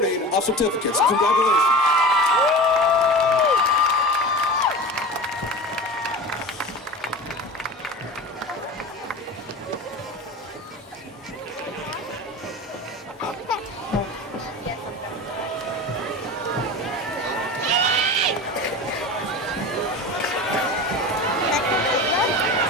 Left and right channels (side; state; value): both; normal; correlation 0.32